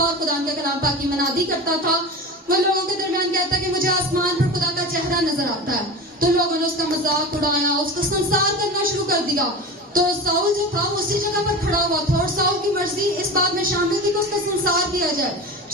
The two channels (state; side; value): normal; both; correlation 0.30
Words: اور خدا کے کلام پاک کی منادی کرتا تھا۔ وہ لوگوں کے درمیان کہتا کہ مجھے آسمان پر خدا کا چہرہ نظر آتا ہے، تو لوگوں نے اس کا مذاق اڑایا، اس کو سنسار کرنا شروع کر دیا۔ تو ساؤل جو تھا اسی جگہ پر کھڑا ہوا تھا، اور ساؤل کی مرضی اس بات میں شامل تھی کہ اس کا سنسار کیا جائے۔